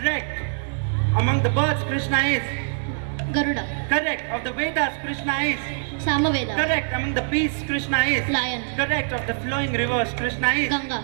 Among the birds, Krishna is Garuda. Correct. Of the Vedas, Krishna is Samaveda. Correct. Among the beasts, Krishna is Lion. Correct. Of the flowing rivers, Krishna is Ganga.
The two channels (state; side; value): silent; left; digital silence